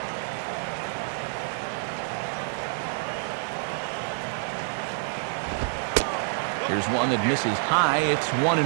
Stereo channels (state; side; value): silent; left; digital silence